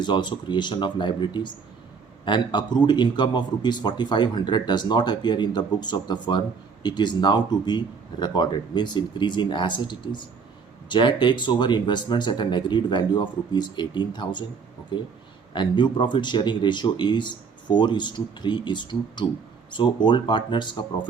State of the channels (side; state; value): left; quieter; 5.6 dB